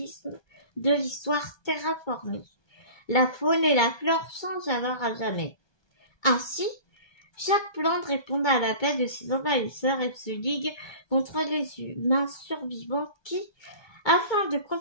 de l'histoire terraformée. La faune et la flore changent alors à jamais. Ainsi, chaque plante répond à l'appel de ses envahisseurs et se ligue contre les humains survivants qui, afin de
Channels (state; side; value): late; right; 1.2 ms